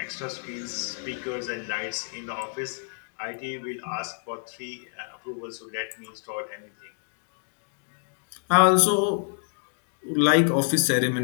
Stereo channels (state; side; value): silent; right; digital silence